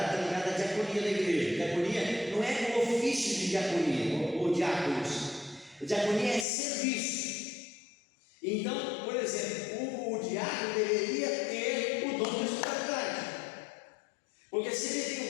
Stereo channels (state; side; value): drops out; right; at 6.5 s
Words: está ligado à diaconia da igreja. Diaconia não é o ofício de diaconia ou diáconos. Diaconia é serviço. Então, por exemplo, o diácono deveria ter o dom da hospitalidade. Porque se ele tem